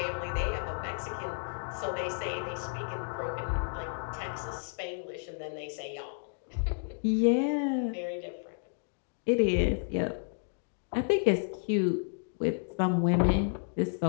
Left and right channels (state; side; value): silent; right; digital silence